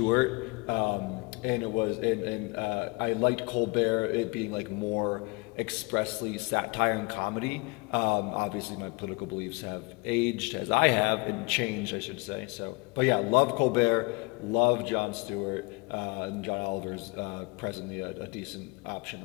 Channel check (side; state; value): right; quieter; 28.4 dB